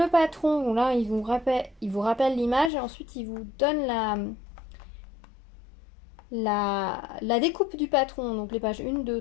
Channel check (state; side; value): drops out; right; at 2.7 s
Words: patron, bon, là il vous rappelle l'image et ensuite il vous donne la découpe du patron. Donc les pages 1,